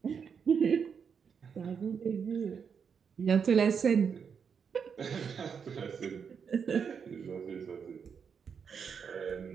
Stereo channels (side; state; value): left; quieter; 6.6 dB